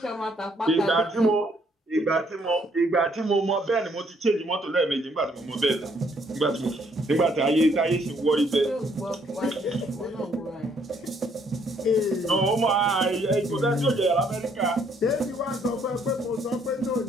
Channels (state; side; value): normal; both; correlation 0.67